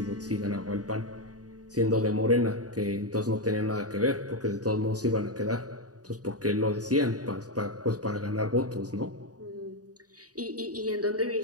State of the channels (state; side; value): late; left; 0.68 ms